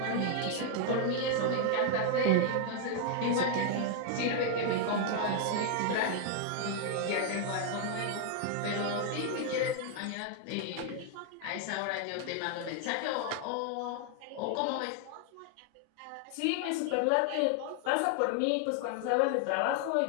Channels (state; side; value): different; both; correlation 0.00